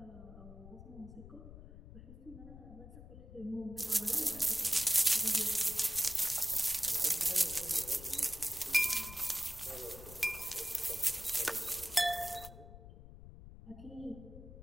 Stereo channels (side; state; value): left; noise; rumble, 15 dB below the sound